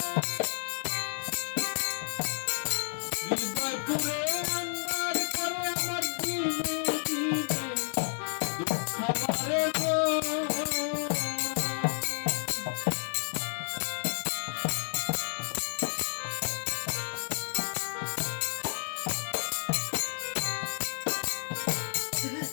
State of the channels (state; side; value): silent; right; digital silence